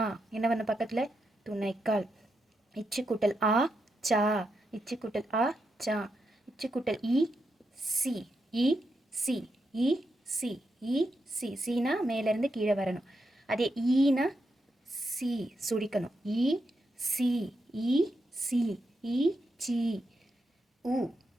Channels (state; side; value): normal; both; correlation 0.84